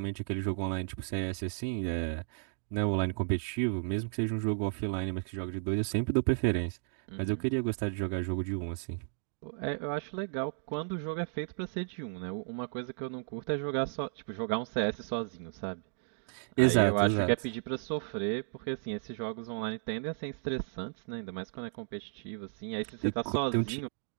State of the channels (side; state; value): left; silent; digital silence